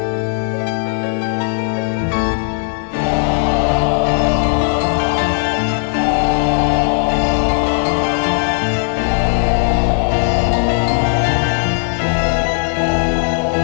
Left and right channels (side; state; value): right; silent; digital silence